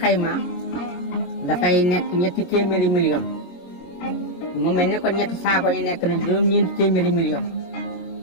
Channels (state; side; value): late; right; 22 ms